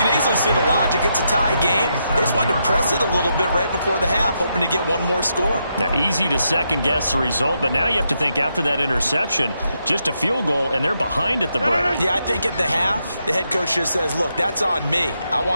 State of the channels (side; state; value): both; inverted; correlation -0.81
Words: easily see the logic. It's a tie game. They just wanted to press it a little bit right before the half, hoping to get one more score. Now, easy to second-guess the result, but now you have to think after that interception, just a field goal, and they're behind at the break. Yeah, I think at the half, the head coach just says, look, that's on me. I